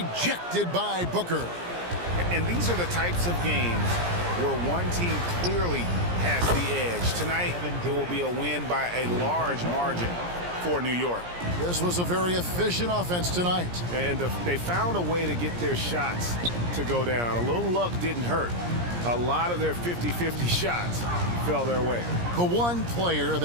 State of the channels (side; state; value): left; late; 17 ms